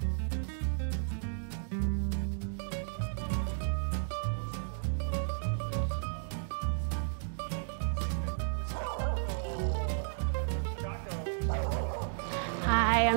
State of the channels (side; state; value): left; silent; digital silence